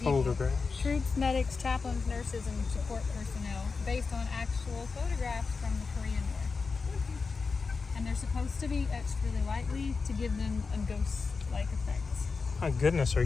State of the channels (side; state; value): right; quieter; 4.6 dB